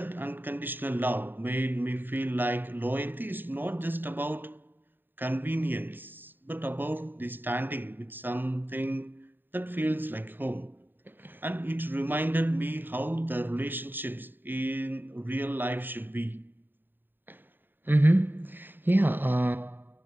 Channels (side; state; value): left; late; 0.093 ms